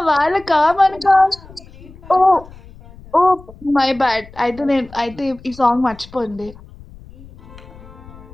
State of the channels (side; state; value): left; noise; rumble, 21 dB below the sound